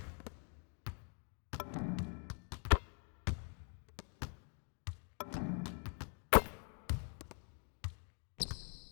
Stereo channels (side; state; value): right; quieter; 39.6 dB